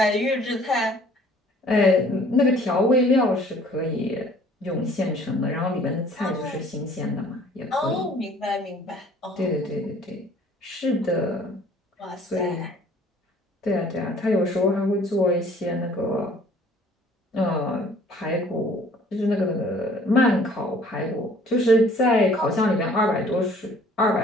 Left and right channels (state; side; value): normal; both; correlation 0.55